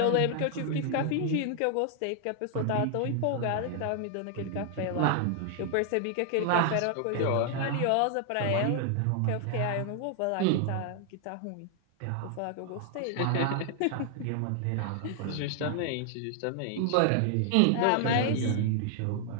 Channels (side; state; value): both; different; correlation 0.00